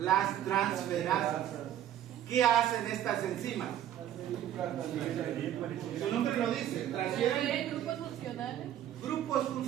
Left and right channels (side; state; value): left; quieter; 11.3 dB